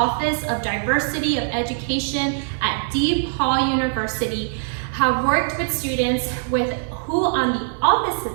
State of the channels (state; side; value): silent; left; 64 dB below the other